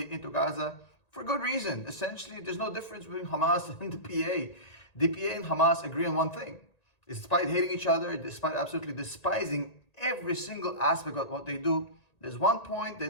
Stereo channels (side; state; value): right; late; 1.9 ms